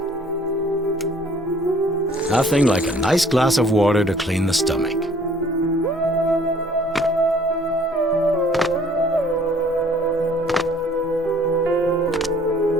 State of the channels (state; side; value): normal; both; correlation 0.57